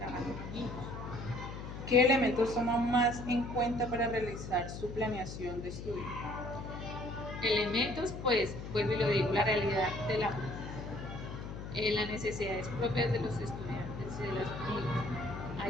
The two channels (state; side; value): noise; left; hum, 8 dB below the sound